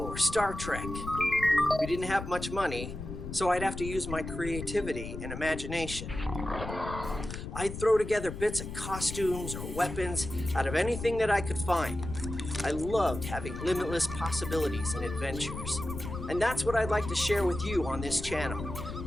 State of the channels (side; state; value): left; noise; rumble, 8 dB below the sound